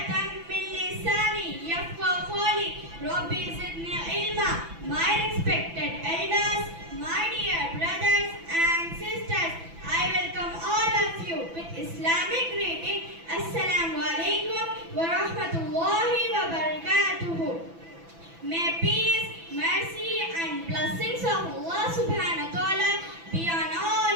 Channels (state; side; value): late; left; 6.0 ms